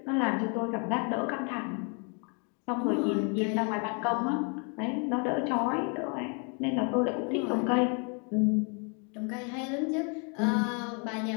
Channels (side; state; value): right; quieter; 37.1 dB